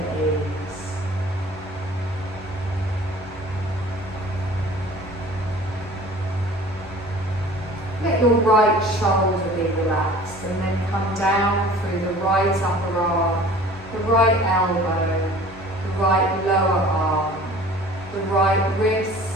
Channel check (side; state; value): both; normal; correlation 0.46